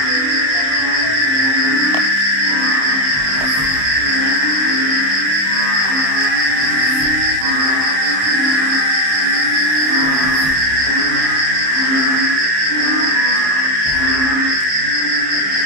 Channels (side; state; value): left; late; 27 ms